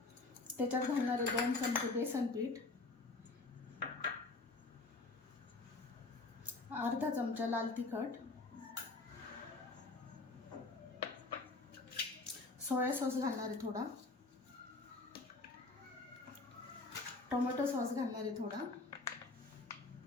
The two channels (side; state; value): right; quieter; 3.5 dB